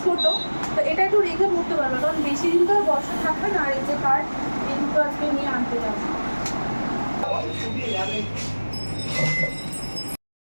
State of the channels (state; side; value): inverted; both; correlation -1.00